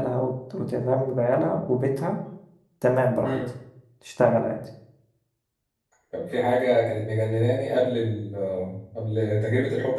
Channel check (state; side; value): identical; both; correlation 1.00